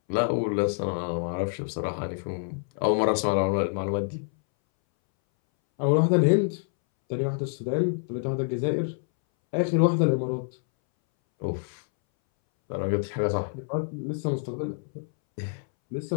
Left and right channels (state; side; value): silent; right; 60 dB below the other